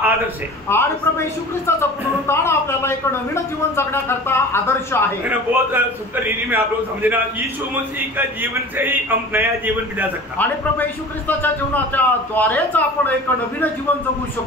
आदर्श है. आणि प्रभू येशू ख्रिस्ताचं पुनरुत्थान आपल्याला एक नवीन जीवन जगण्याकरता आदर्श आहे. बहुत सुंदर रीति में आप लोग समझना. यीशु मसीह का जीवन से ही हम नया जीवन बिता सकते. आणि प्रभू येशू ख्रिस्ताच्या जीवनाच्या द्वारेच आपण एक नवीन जीवन जगू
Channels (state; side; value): normal; both; correlation 0.39